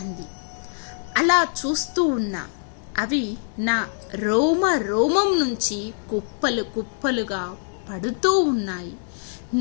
అంది. అలా చూస్తూ ఉన్నా అవి నా రోమ రోమం నుంచి కుప్పలు కుప్పలుగా పడుతూ ఉన్నాయి.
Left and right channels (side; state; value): right; silent; digital silence